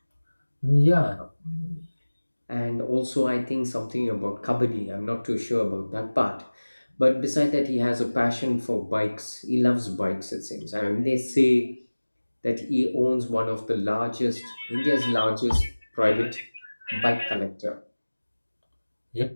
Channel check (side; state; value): both; inverted; correlation -1.00